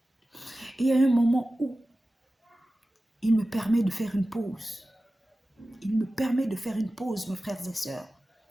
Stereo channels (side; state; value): both; normal; correlation 0.95